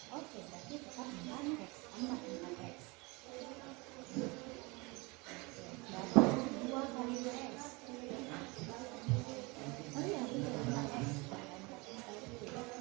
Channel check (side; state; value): left; quieter; 26.5 dB